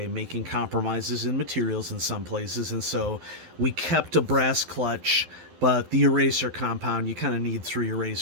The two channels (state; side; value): late; left; 12 ms